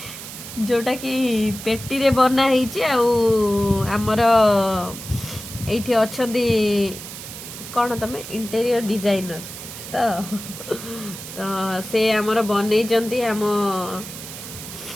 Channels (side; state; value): right; noise; hiss, 11 dB below the sound